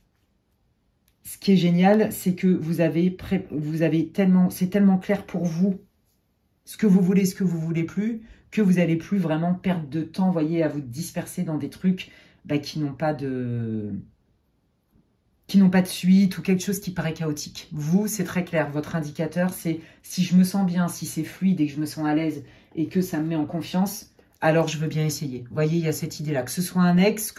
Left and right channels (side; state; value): both; identical; correlation 1.00